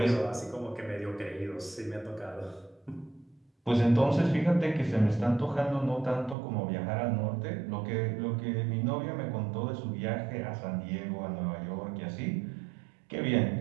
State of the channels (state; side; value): drops out; left; at 6.4 s